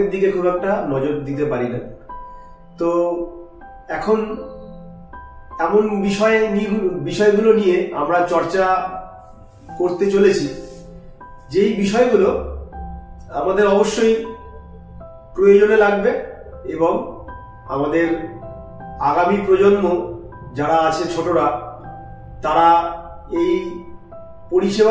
দিকে খুব একটা নজর দিতে পারি না। তো এখন এমন বিষয়গুলো নিয়ে আমরা চর্চা করতে চলেছি, যেই বিষয়গুলো আমাদের অবশ্যই প্রয়োজনে লাগবে এবং আমাদের আগামী প্রজন্ম যারা আছে, ছোটরা, তারা এই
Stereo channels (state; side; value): identical; both; correlation 1.00